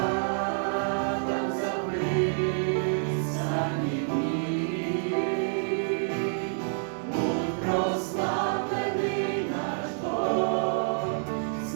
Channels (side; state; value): left; silent; digital silence